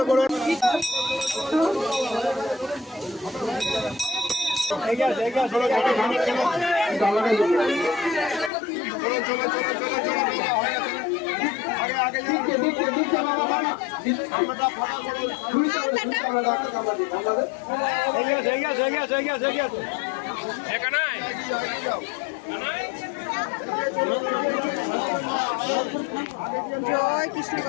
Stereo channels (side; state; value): right; drops out; at 8.5 s